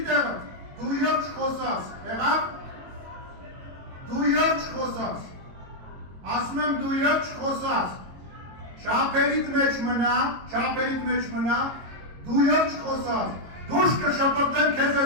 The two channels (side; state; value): left; late; 22 ms